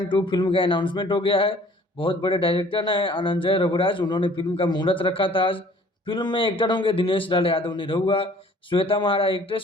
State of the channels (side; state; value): both; normal; correlation 0.53